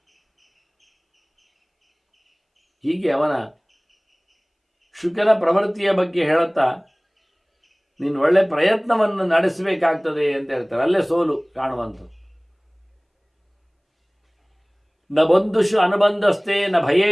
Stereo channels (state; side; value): identical; both; correlation 1.00